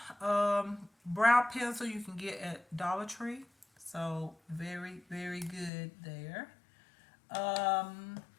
brow pencil you can get at Dollar Tree. So very, very good there. Um,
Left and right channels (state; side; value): drops out; right; at 5.7 s